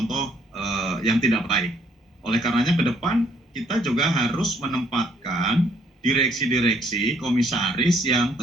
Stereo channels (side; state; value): both; normal; correlation 0.66